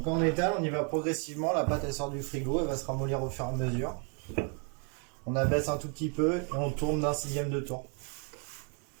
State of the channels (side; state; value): left; quieter; 38.1 dB